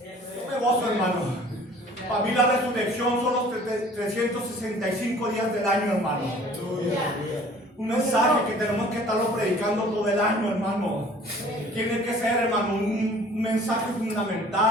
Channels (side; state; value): both; normal; correlation 0.51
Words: Yo me gozo, hermano. Para mí la resurrección son los 365 días del año, hermano. Un mensaje que tenemos que estarlo predicando todo el año, hermano. Tiene que ser, hermano, un mensaje